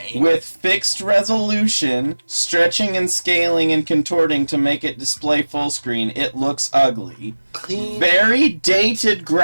With fixed resolution, stretching and scaling and contorting to make it display full screen, it looks ugly. Clean. Very dated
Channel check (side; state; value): both; inverted; correlation -1.00